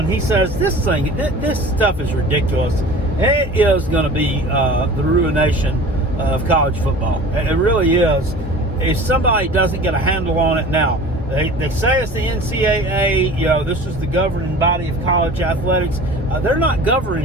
he says this stuff is ridiculous. It is going to be the ruination of college football. It really is. If somebody doesn't get a handle on it now, they say it's the NCAA, this is the governing body of college athletics. They're not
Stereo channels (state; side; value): normal; both; correlation 0.41